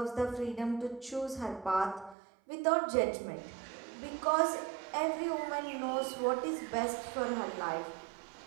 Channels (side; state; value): left; drops out; at 2.1 s